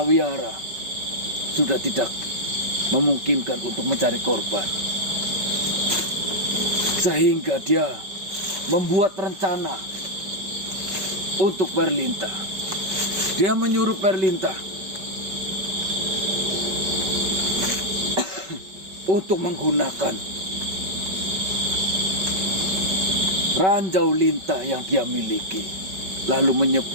sudah tidak memungkinkan untuk mencari korban. Sehingga dia membuat rencana untuk Berlinta. Dia menyuruh Berlinta untuk menggunakan ranjau lintah yang dia miliki, lalu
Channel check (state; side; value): late; left; 5.3 ms